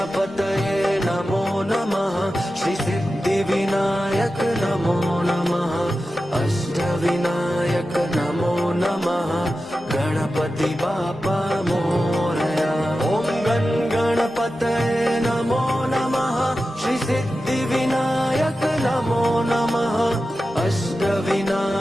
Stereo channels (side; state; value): both; normal; correlation 0.93